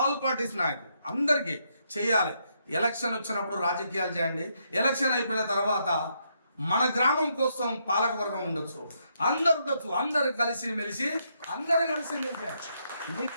పార్టీస్ నాయకులు అందరికీ చేయాలి. ఎలక్షన్ వచ్చినప్పుడు రాజకీయాలు చేయండి. ఎలక్షన్ అయిపోయిన తర్వాత మన గ్రామం కోసం పాలకవర్గం ఉండొచ్చు, అందరు ఉండొచ్చు. అందరు కలిసి మెలిసి నీ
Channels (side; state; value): both; inverted; correlation -0.77